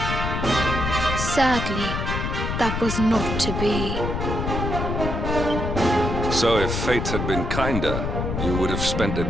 Sadly, that was not to be. So if fate had been kinder, you would have spent a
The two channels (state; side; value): noise; left; rumble, 2 dB below the sound